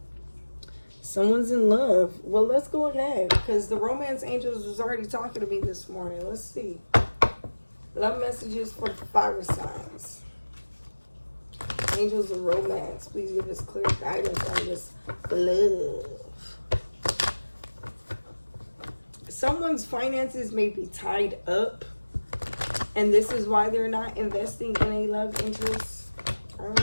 Someone's in love. Well, let's go ahead. Because the romance angels was already talking to me this morning. Let's see. Love messages for fire signs. Angels of romance. Please give us clear guidance on this love. Someone's finances may be tied up. And this is why they're not investing in a love interest. I don't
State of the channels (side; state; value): both; inverted; correlation -1.00